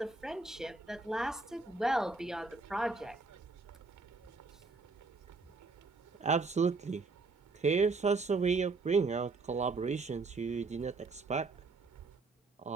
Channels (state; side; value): quieter; left; 3.9 dB